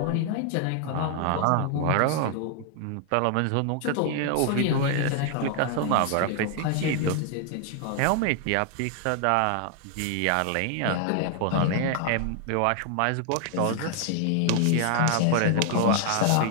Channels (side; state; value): both; different; correlation 0.00